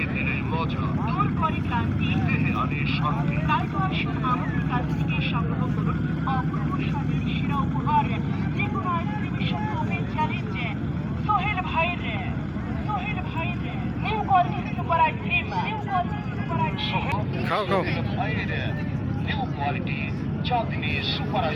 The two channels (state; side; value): identical; both; correlation 1.00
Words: দিলে মজা দূর করে ক্লান্তি, দেহে আনে শান্তি। তাই তো আসুন আমাদের কাছ থেকে সংগ্রহ করুন অপূর্ব স্বাদের সেরা উপহার, যে কোনো আইসক্রিমের সাথে ওপেন চ্যালেঞ্জ। সোহেল ভাইয়ের new quality super ice cream, new quality super ice cream. খাও খাও। ভাইয়ের new quality Chandni super